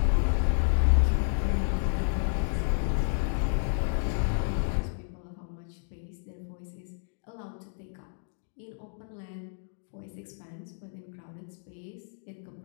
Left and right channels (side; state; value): right; silent; digital silence